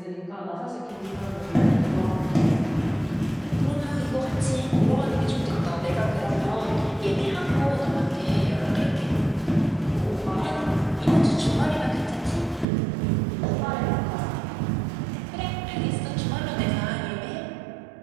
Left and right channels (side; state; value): left; drops out; at 12.7 s